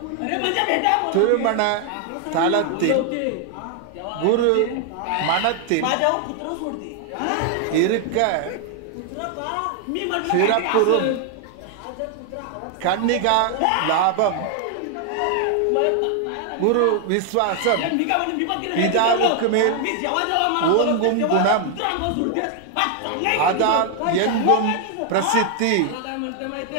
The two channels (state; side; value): different; both; correlation 0.00